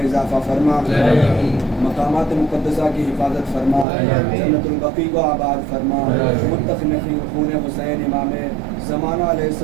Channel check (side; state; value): left; drops out; at 3.9 s